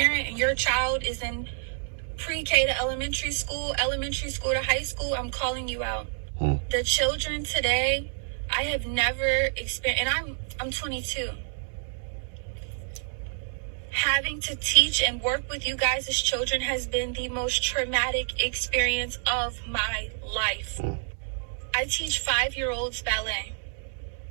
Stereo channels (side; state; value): left; silent; digital silence